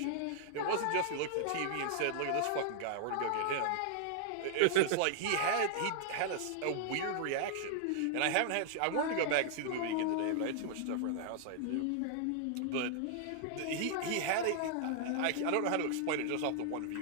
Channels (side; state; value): both; different; correlation -0.01